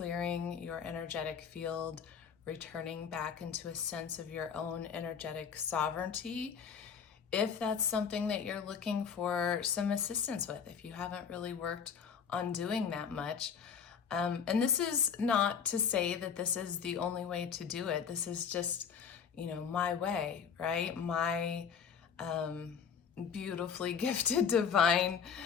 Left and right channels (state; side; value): quieter; right; 7.0 dB